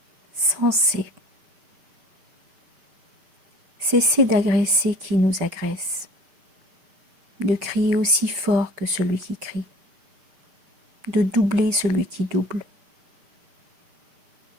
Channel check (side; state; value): left; late; 5.4 ms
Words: Sensé. Cesser d'agresser qui nous agresse, de crier aussi fort que celui qui crie, de doubler celui qui double.